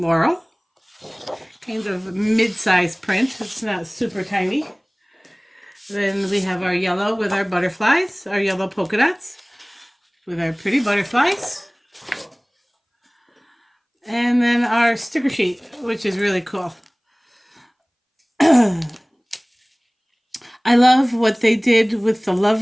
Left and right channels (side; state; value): both; identical; correlation 1.00